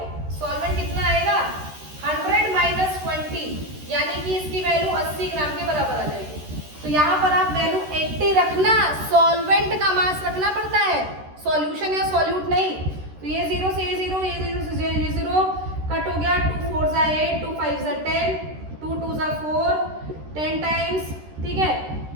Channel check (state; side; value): late; left; 13 ms